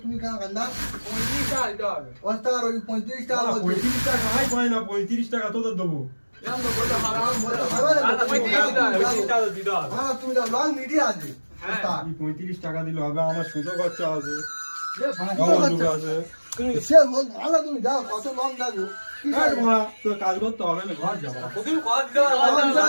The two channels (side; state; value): both; inverted; correlation -1.00